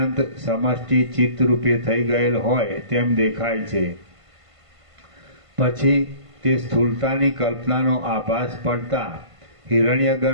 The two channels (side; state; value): left; late; 1.5 ms